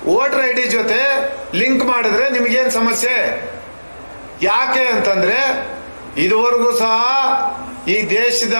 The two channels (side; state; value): both; inverted; correlation -1.00